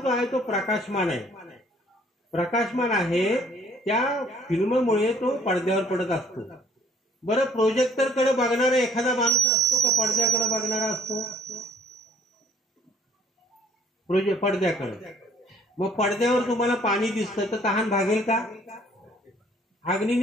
आहे तो प्रकाशमान आहे. प्रकाशमान आहे, त्या फिल्ममुळे तो पडद्यावर पडत असतो. बरं, प्रोजेक्टर कडे बघणारा एखादा माणूस असतो का पडद्याकडे बघणारा असतो? पडद्याकडे. मग पडद्यावर तुम्हाला पाणी दिसतं तर तहान भागेल का?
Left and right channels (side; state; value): both; normal; correlation 0.58